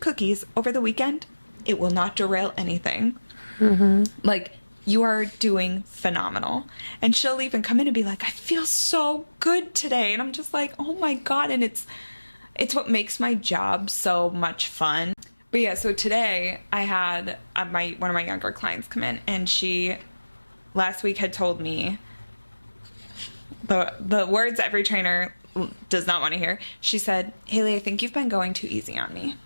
over the weekend, it will not derail anything. Like, you are doing phenomenal. And she'll even come in and be like, I feel so good today. And I'm just like, oh my God. And it's what makes my job so much fun. But yeah, so today I had one of my younger clients come in, and she last week had told me the words every trainer does not want to hear. She said, Haley, I think you've been going too easy on me.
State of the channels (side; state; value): both; inverted; correlation -1.00